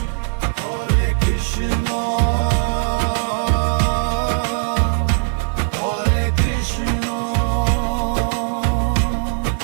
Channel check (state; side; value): silent; left; 58 dB below the other